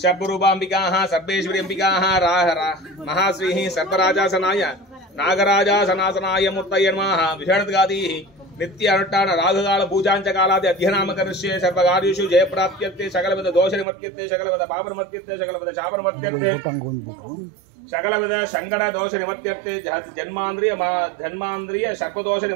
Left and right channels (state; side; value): drops out; left; at 13.9 s